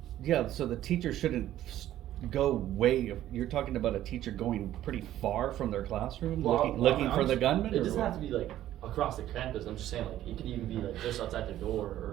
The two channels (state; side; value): quieter; left; 13.0 dB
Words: teacher shouldn't go you're talking about a teacher going pretty far from their classroom, looking for the gunman? It or doesn't what? have to be like across the campus. I'm just saying, like, it could even be like just outside the door